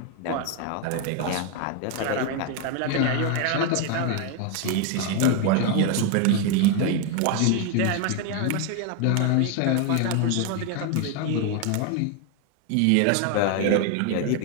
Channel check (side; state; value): both; different; correlation 0.01